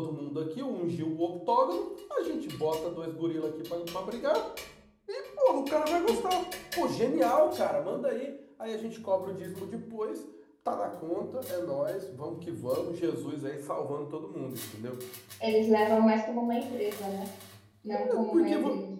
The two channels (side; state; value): both; identical; correlation 1.00